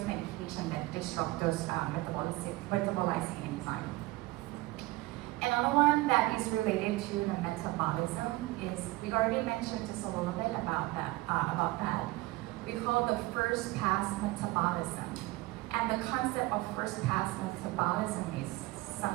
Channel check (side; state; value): left; quieter; 20.2 dB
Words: medications that disrupt those metabolizing enzymes. Another one that is related to the metabolism is, we already mentioned just a little bit about that. We call the first pass metabolism. And the concept of first pass metabolism is